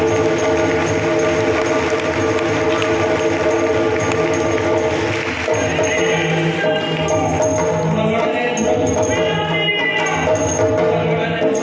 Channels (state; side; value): identical; both; correlation 1.00